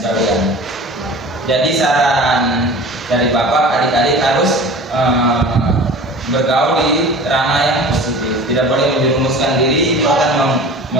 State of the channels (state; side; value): normal; both; correlation 0.39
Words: Jadi saran dari Bapak, adik-adik harus bergaul di ranah yang positif. Tidak boleh menjerumuskan diri, itu akan